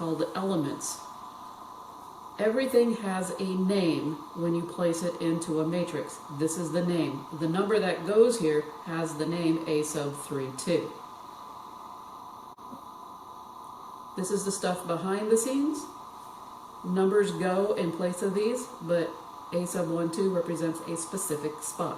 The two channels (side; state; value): both; identical; correlation 1.00